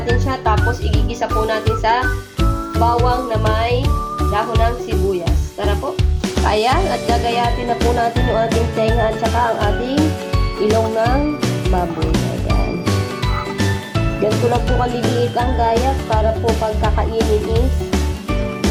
siya. Tapos igigisa po natin sa bawang na may dahon ng sibuyas. Tara po. Ayan, at gagayatin na po natin yung ating tenga at saka ang ating ilong ng baboy. Ayan. Ganito lang po kaliliit ang gayat para po pagkakainin is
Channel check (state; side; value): identical; both; correlation 1.00